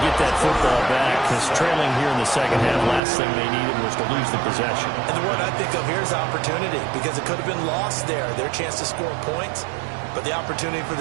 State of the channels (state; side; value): drops out; left; at 3.0 s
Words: get that football back because trailing here in the second half, last thing they needed was to lose the possession. And the word I think of here is opportunity because it could have been lost there, their chance to score points. But the opportunity for